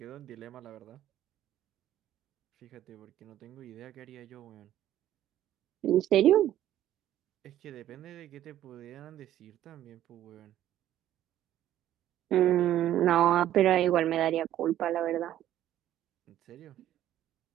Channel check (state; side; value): quieter; left; 12.4 dB